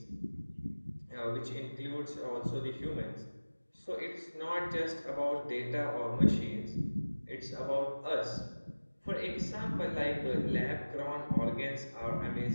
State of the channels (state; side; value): inverted; both; correlation -1.00